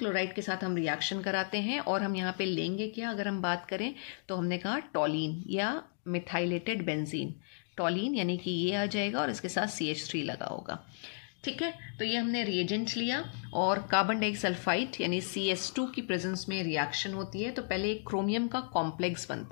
के साथ हम रिएक्शन कराते हैं और हम यहाँ पे लेंगे क्या, अगर हम बात करें तो हमने कहा टॉलिन या मिथाइलेटेड बेंजीन, टॉलिन यानी कि ये आ जाएगा और इसके साथ CH3 लगा होगा, ठीक है। तो ये हमने रिएजेंट लिया और कार्बन डाइसल्फाइड यानी CS2 की प्रेजेंस में रिएक्शन होती है, तो पहले एक क्रोमियम का कॉम्प्लेक्स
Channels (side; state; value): right; silent; digital silence